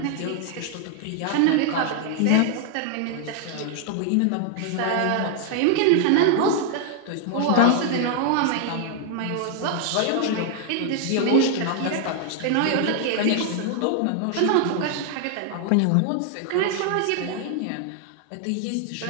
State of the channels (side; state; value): both; different; correlation 0.00